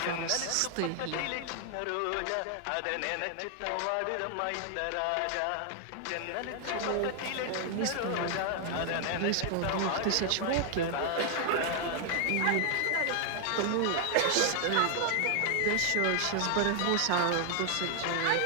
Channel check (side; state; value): both; different; correlation 0.00